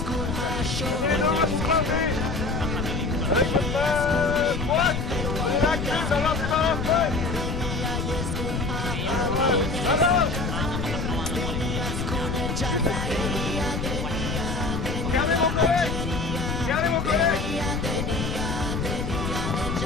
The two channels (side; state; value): left; noise; rumble, 3 dB below the sound